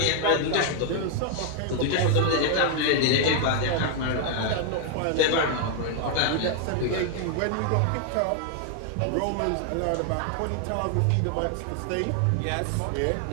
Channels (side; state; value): both; different; correlation 0.00